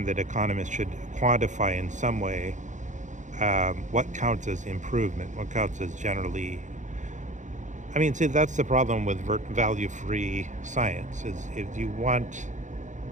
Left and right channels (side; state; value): left; late; 0.35 ms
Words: that economists should quantify in some way what counts as improvement, what counts as generally. I mean, see, that's the problem with value-free science, is if you want